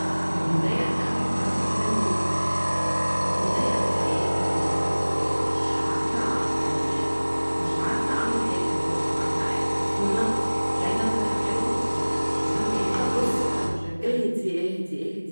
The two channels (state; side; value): inverted; both; correlation -1.00